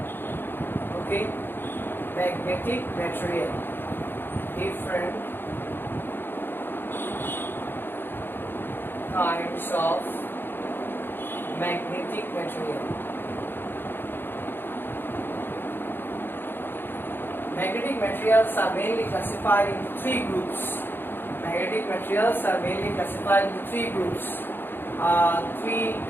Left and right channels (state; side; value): late; right; 0.10 ms